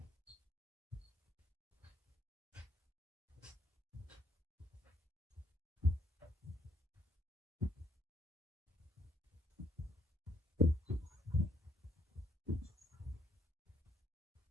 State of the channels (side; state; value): both; normal; correlation 0.67